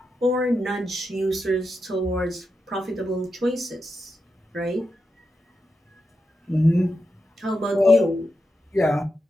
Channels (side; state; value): both; normal; correlation 0.87